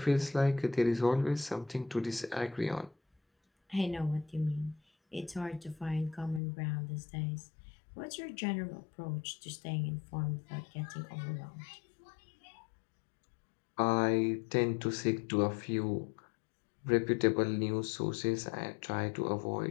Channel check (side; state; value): right; drops out; at 6.4 s